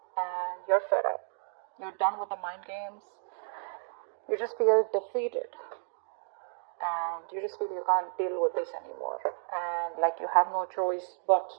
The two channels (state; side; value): silent; left; digital silence